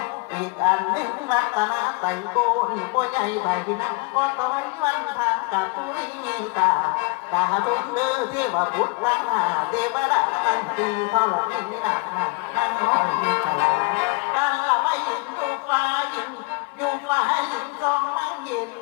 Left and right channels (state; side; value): quieter; right; 29.3 dB